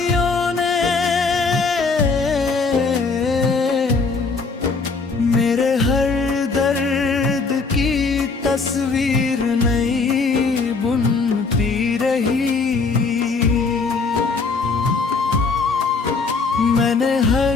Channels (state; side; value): quieter; right; 4.4 dB